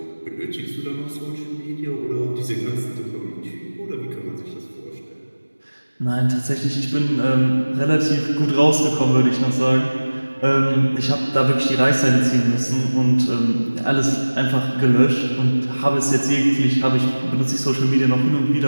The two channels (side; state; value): both; inverted; correlation -1.00